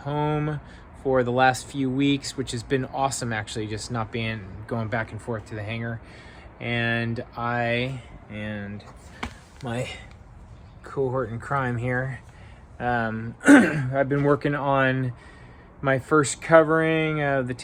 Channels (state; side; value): identical; both; correlation 1.00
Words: for the last few weeks, which has been awesome actually, just not going back and forth to the hangar. And I and my cohort in crime here, I've been working on my first covering of the